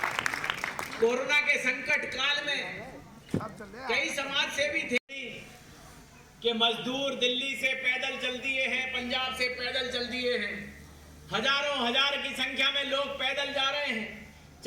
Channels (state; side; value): identical; both; correlation 1.00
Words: कोरोना के संकट काल में कई समाज सेवी थे कि मजदूर दिल्ली से पैदल चल दिए हैं, पंजाब से पैदल चल दिए हैं, हजारों हजार की संख्या में लोग पैदल जा रहे हैं,